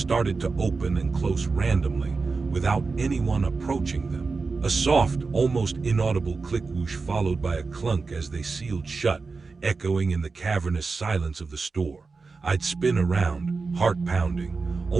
to open and close randomly, without anyone approaching them. A soft, almost inaudible click whoosh followed by a clunk as they sealed shut, echoing in the cavernous silence of the store. I'd spin around, heart pounding,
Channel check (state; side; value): quieter; left; 4.3 dB